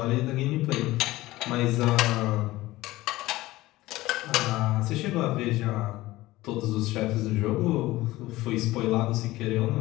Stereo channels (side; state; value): right; quieter; 17.9 dB